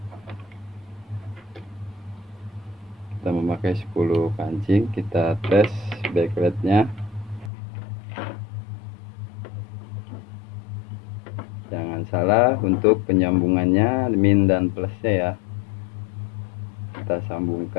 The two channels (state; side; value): drops out; right; at 7.5 s